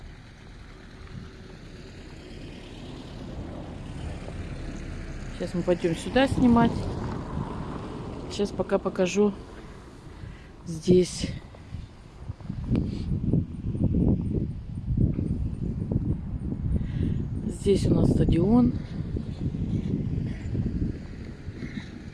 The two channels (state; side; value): identical; both; correlation 1.00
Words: Сейчас мы пойдем сюда снимать. Сейчас пока покажу здесь. Здесь у нас стадион.